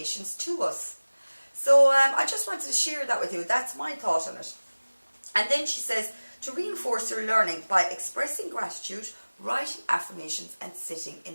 to us. So I just wanted to share that with you. That's my thought on it. And then she says, to reinforce your learning by expressing gratitude, writing affirmations, and sitting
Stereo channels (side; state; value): both; inverted; correlation -1.00